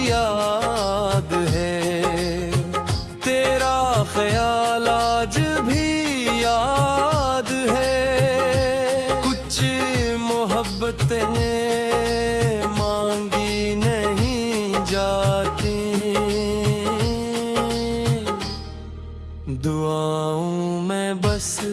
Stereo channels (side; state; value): both; identical; correlation 1.00